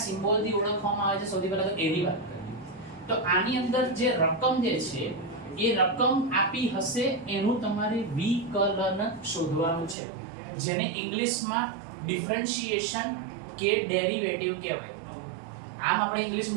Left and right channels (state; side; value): drops out; left; at 10.0 s